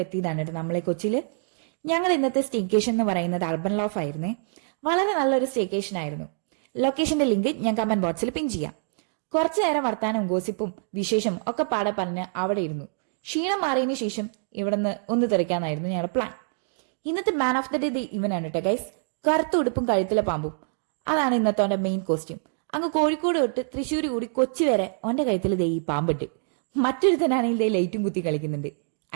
എത്തിയതാണ് കേട്ടോ നമ്മളെ കൊച്ചിയില്. ഞങ്ങൾ ഇന്നത്തെ സ്റ്റേക്കേഷൻ എന്ന് പറയുന്നത് അർബൻ ലോഫ് ആയിരുന്നേ. വളരെ നല്ലൊരു സ്റ്റേക്കേഷൻ ആയിരുന്നു. ലൊക്കേഷന്റെ ലിങ്ക് ഞാൻ കമന്റ് ബോക്സിൽ പിൻ ചെയ്യാം. കുറച്ചു നേരം വർത്താനവും ഗോസിപ്പും വിശേഷം ഒക്കെ പാടെ പറഞ്ഞ് അവിടെ ഇരുന്നു. ക്ഷീണം മാറിയതിനു ശേഷം ഇവിടുന്ന് ഒന്ന് തെറിക്കാന്നായിരുന്നു ഞങ്ങളുടെ പ്ലാൻ. ഇന്നത്തെ മാൻ ഓഫ് ദ ഡേ ഇവനാണ് കേട്ടോ ഗൈസ്. കറുത്ത ഉടുപ്പും കഴുത്തിലെ പാമ്പും, അതാണ് ഇന്നത്തെ അവന്റെ മെയിൻ കോസ്റ്റ്യൂം. അങ്ങ് കോഴിക്കോട് തൊട്ട് തൃശ്ശൂർ കൂടി കൊച്ചി വരെ ഓന്റെ കഴുത്തിൽ ദേ ഈ പാമ്പിട്ട്. മറ്റൊരുത്തനാണെങ്കിൽ ദേ ലൈറ്റും കുത്തി കളിക്കുന്നുണ്ട്.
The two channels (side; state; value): left; silent; digital silence